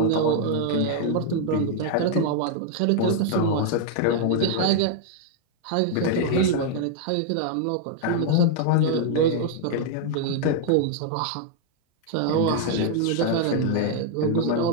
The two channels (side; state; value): both; different; correlation 0.00